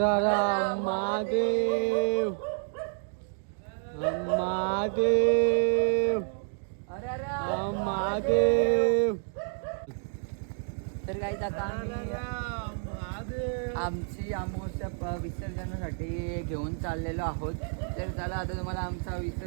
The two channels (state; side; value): silent; left; 57 dB below the other